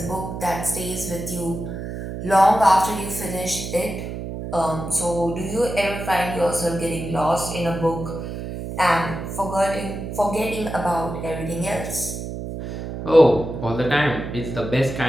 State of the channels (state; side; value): noise; right; hum, 7 dB below the sound